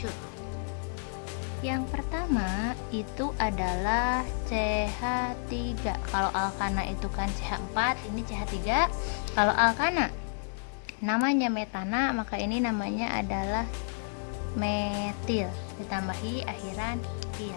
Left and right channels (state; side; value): silent; right; digital silence